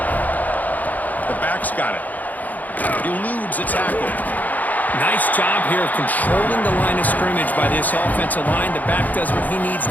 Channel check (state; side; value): late; right; 0.080 ms